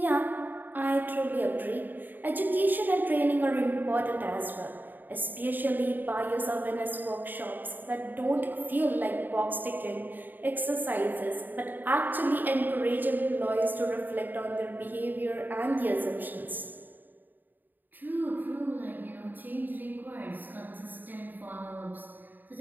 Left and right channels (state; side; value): late; left; 0.089 ms